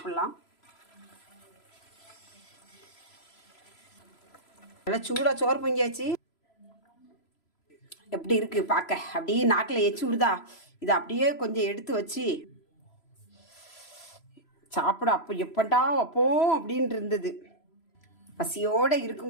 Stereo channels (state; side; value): late; right; 3.0 ms